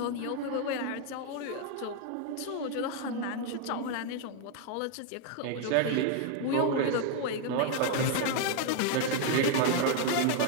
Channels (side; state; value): both; different; correlation 0.00